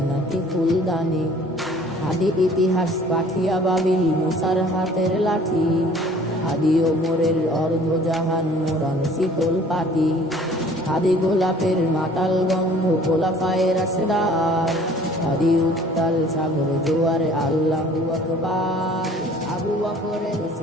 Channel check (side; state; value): both; normal; correlation 0.53